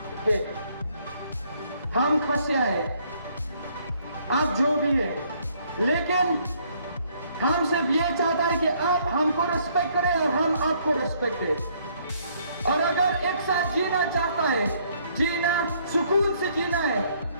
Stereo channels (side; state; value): both; inverted; correlation -0.66